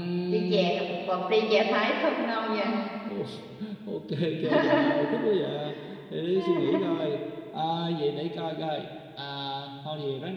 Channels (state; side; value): identical; both; correlation 1.00